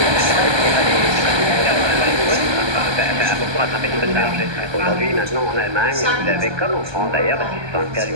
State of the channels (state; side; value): late; left; 1.2 ms